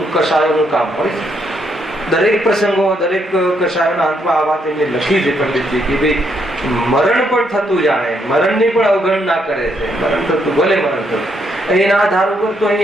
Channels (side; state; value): both; normal; correlation 0.75